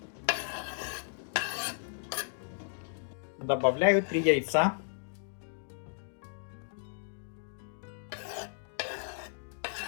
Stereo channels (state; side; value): silent; right; digital silence